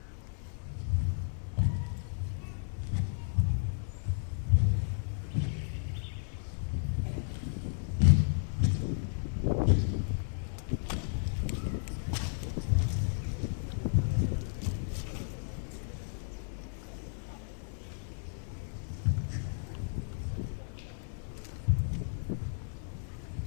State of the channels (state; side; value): silent; right; digital silence